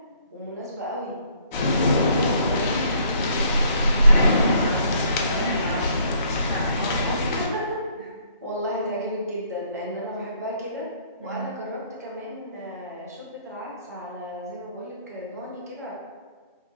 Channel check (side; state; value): both; inverted; correlation -0.63